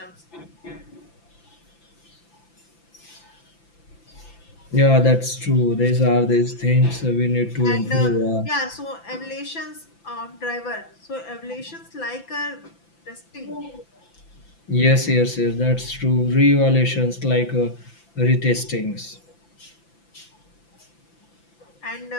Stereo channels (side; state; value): right; late; 5.9 ms